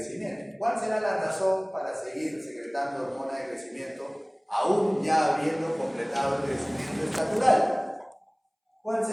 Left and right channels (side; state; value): both; identical; correlation 1.00